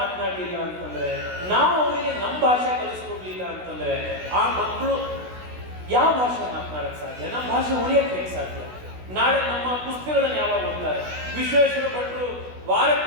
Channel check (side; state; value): left; late; 16 ms